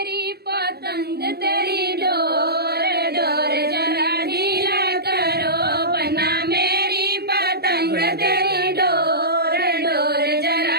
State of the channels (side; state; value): left; late; 0.47 ms